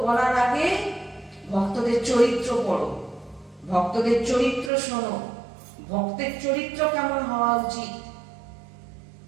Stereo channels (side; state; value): left; drops out; at 4.7 s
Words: বলার আগে ভক্তদের চরিত্র পড়ো, ভক্তদের চরিত্র শোনো, ভক্তের চরিত্র কেমন হওয়া উচিত,